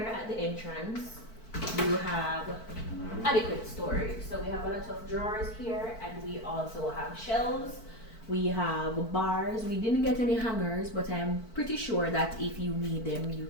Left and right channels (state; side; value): late; right; 4.5 ms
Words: at the entrance you have adequate storage. So we have a lot of drawers here, and we also have shelves. We have bars. We didn't get any hangers, but I'm pretty sure that if you need them you